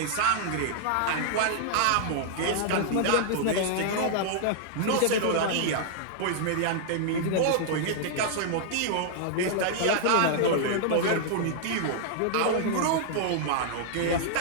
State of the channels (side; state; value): both; different; correlation -0.01